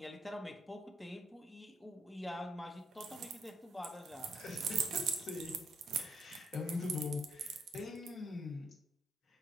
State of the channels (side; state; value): both; normal; correlation 0.73